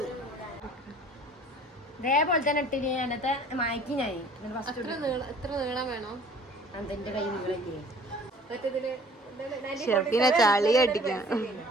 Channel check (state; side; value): normal; both; correlation 0.52